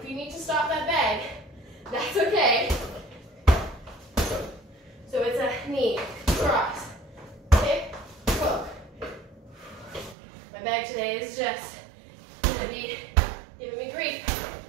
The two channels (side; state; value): left; drops out; at 10.2 s